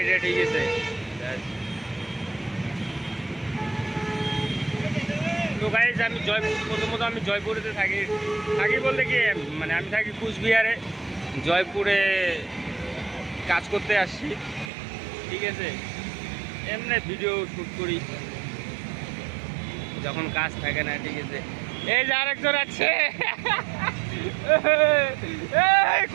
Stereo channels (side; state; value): left; drops out; at 14.7 s